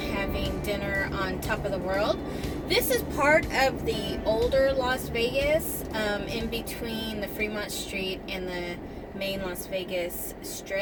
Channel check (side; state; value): both; identical; correlation 1.00